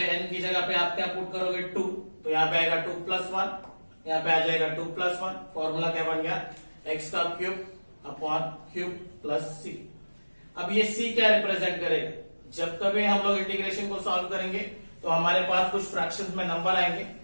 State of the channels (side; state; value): both; inverted; correlation -1.00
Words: एन की जगह पे आप क्या पुट करोगे 2, तो यहाँ पे आएगा 2 प्लस वन, यहाँ पे आ जाएगा 2 प्लस वन. फॉर्मूला क्या बन गया, एक्स का क्यूब अपॉन क्यूब प्लस सी. अब ये सी क्या रिप्रेजेंट करेगा, जब कभी हम लोग इंटीग्रेशन को सॉल्व करेंगे तो हमारे पास कुछ फ्रैक्शंस में नंबर आएंगे,